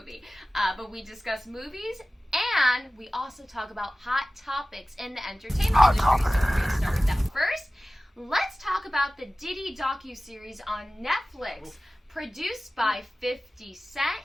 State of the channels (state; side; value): normal; both; correlation 0.97